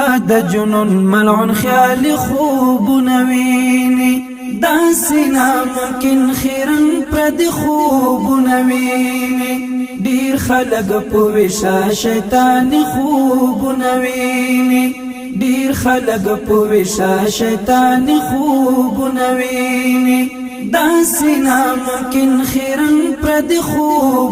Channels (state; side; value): identical; both; correlation 1.00